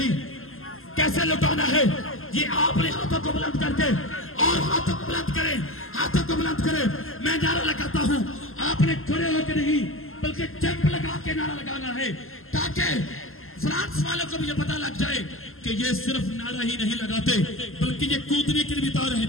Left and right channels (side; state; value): right; late; 0.61 ms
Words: कैसे लुटाना है ये आपने हाथों को बुलंद करके, और हाथों को बुलंद करें, हाथों को बुलंद करें। मैं नारा लगाता हूं, आपने खड़े होकर नहीं बल्कि जंप लगा के नारा लगाना है, ताकि फ्रांस वालों को भी ये पता लग जाए कि ये सिर्फ नारा ही नहीं लगाते बल्कि ये कूदने के लिए भी